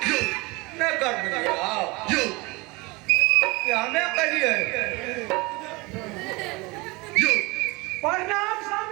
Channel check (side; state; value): left; quieter; 24.7 dB